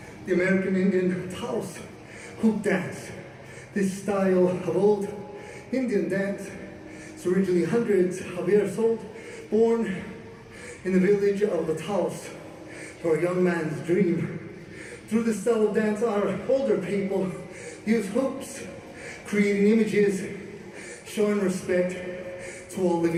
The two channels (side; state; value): both; identical; correlation 1.00